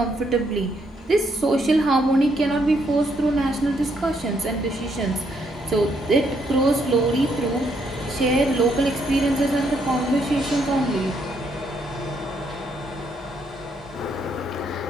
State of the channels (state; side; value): normal; both; correlation 0.74